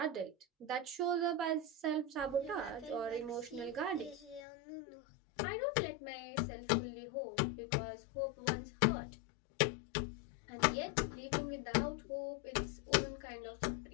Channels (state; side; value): drops out; right; at 4.5 s